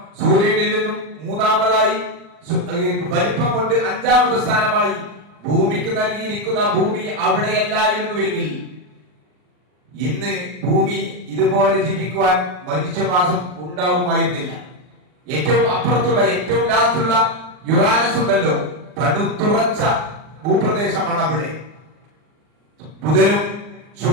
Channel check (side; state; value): left; late; 39 ms